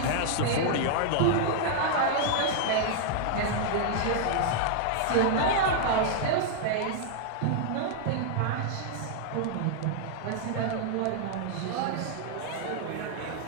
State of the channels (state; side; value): different; both; correlation -0.01